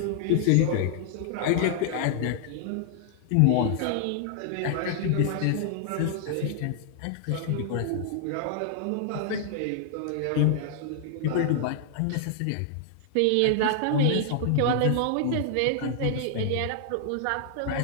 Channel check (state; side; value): different; both; correlation -0.01